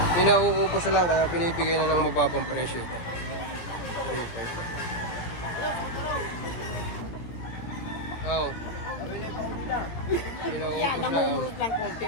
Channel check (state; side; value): late; right; 17 ms